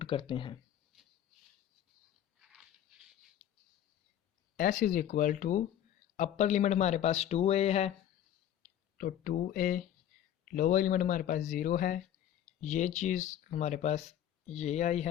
करते हैं। s is equal to upper limit हमारे पास 2a है तो 2a, लोअर लिमिट हमारे पास 0 है, ये चीज़ हमारे पास ये आई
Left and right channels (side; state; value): right; quieter; 10.9 dB